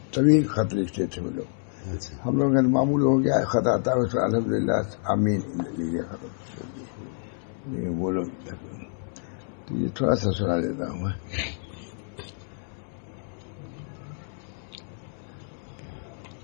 طویل خط لکھتے تھے وہ لوگ. ہم لوگ کا معمول ہو گیا خط آتا ہے اس پر الحمد للہ آمین لکھ دیا ختم کر دیے. لیکن وہ لوگ تو یہ تھوڑا سا سنا دیتا ہوں میں.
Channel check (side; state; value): right; silent; 60 dB below the other